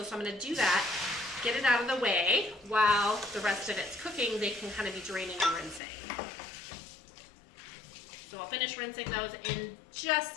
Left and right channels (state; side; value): drops out; right; at 5.8 s